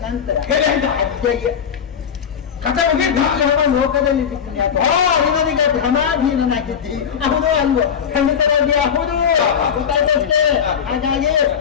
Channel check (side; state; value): right; quieter; 7.6 dB